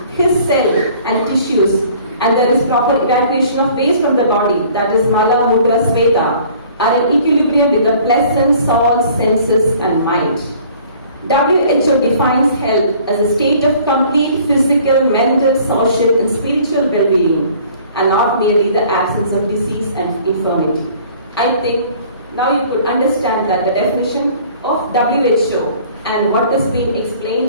his cell and tissues, and there is proper evacuation of waste from the body, that is Mala, Mudra, Sveta, are in equilibrium with the pleasant soul, senses and mind. WHO defines health as a state of complete physical, mental, social, and spiritual well-being, and not merely the absence of disease and infirmity. I think now you could understand that the definition of WHO and what has been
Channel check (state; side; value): inverted; both; correlation -0.53